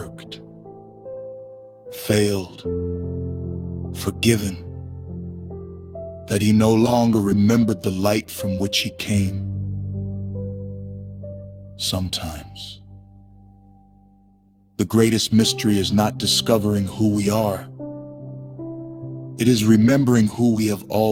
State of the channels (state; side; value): identical; both; correlation 1.00